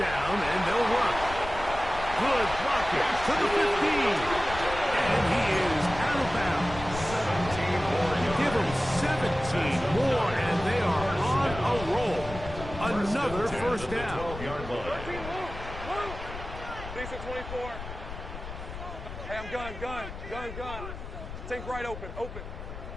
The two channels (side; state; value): left; noise; rumble, 10 dB below the sound